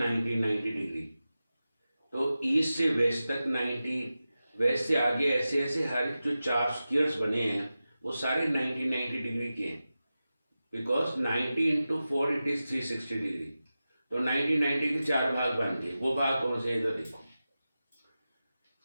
डिग्री। तो ईस्ट से वेस्ट तक 90, वेस्ट से आगे ऐसे ऐसे हर जो चार स्क्वायर्स बने हैं वो सारे 90 डिग्री के हैं, because 90 into 4 it is 360 degree. तो 90 के चार भाग बन गए। वो भाग कौन से, इधर देखो।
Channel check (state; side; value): inverted; both; correlation -0.94